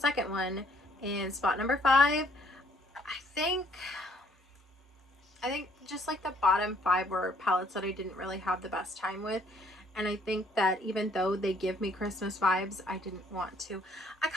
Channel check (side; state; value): both; normal; correlation 0.64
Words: one, in spot number 5. I think just like the bottom 5 were palettes that I didn't really have the best time with, and I think that even though they give me Christmas vibes, I didn't want to. I